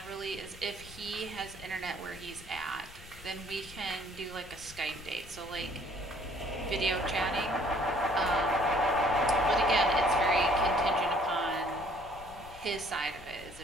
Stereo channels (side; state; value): left; noise; rumble, 18 dB below the sound